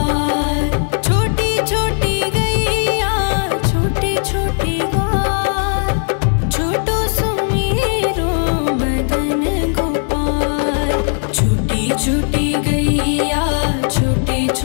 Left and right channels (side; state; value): right; silent; 66 dB below the other